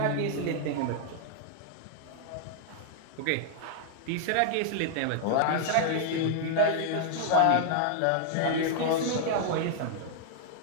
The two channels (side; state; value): both; different; correlation -0.01